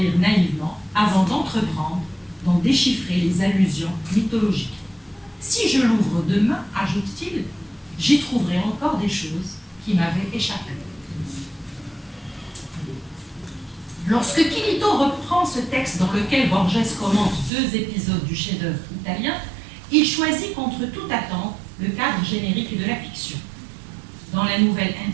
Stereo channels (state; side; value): drops out; left; at 17.5 s